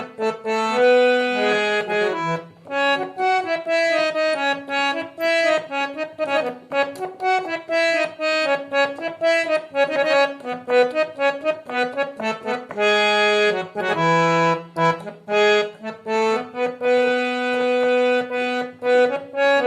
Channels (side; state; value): both; identical; correlation 1.00